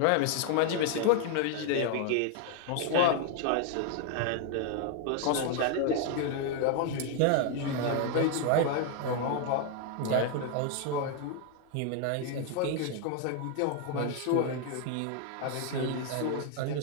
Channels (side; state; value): both; different; correlation 0.00